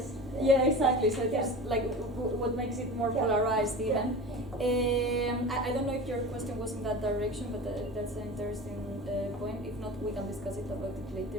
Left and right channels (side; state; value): both; normal; correlation 0.33